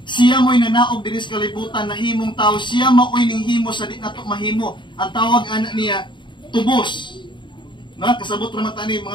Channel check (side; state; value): right; late; 0.23 ms